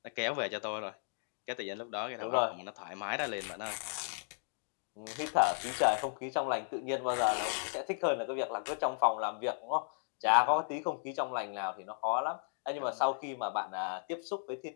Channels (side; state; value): right; silent; digital silence